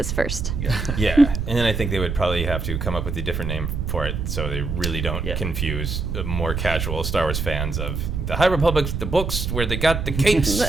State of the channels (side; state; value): right; noise; rumble, 3 dB below the sound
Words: first. Yeah. And then I think they would probably have to come up with a different name for it so they really don't confuse more casual Star Wars fans of the High Republic's the books where they got the capes